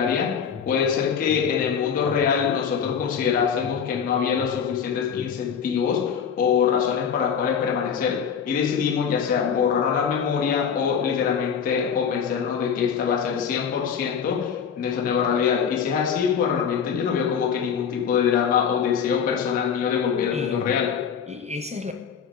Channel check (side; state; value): right; quieter; 7.2 dB